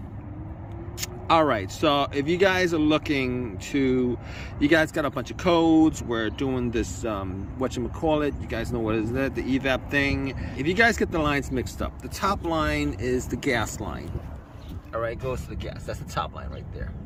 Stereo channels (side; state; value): both; identical; correlation 1.00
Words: all right, so if you guys are looking to, you guys got a bunch of codes. We're doing this, whatchamacallit, you guys know what is that, the Evap thing. If you guys get the lines mixed up, the top line is the gas line. All right, goes to the gas. That's the top line right there.